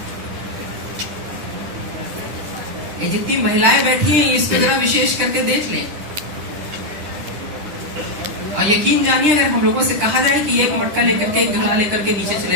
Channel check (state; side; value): late; left; 10 ms